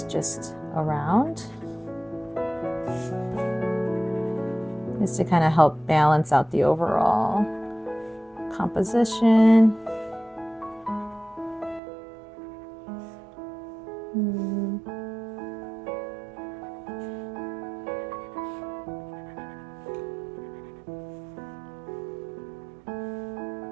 just around, just to kind of help balance out the overall composition.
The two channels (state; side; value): drops out; left; at 11.8 s